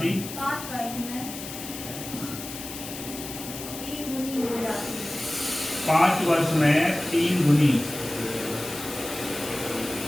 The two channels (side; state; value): left; noise; hiss, 10 dB below the sound